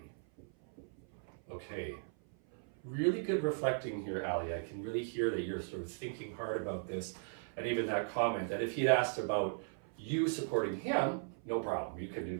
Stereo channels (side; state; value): left; silent; 53 dB below the other